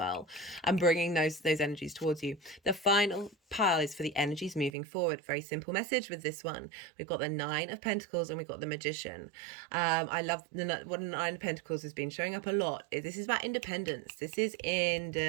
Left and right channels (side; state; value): left; drops out; at 4.7 s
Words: and bringing those energies towards you. The final pile is for the energies moving forward. Very simple message with this one. We've got the 9 of Pentacles and we've got the Magician. I love what the 9 of Pentacles has been showing up a lot. This is about independence. This is